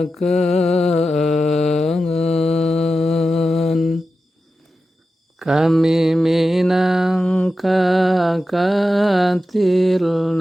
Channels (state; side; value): normal; both; correlation 0.91